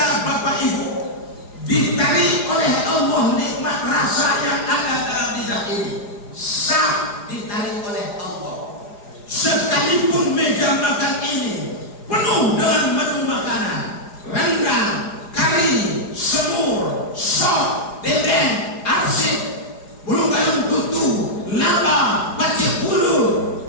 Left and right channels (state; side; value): late; right; 4.9 ms